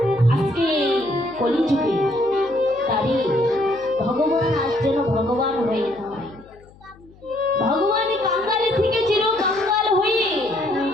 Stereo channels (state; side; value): noise; left; hum, 25 dB below the sound